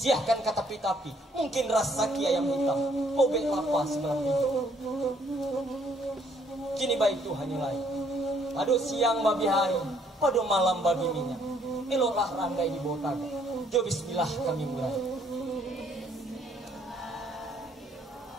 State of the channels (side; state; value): both; normal; correlation 0.65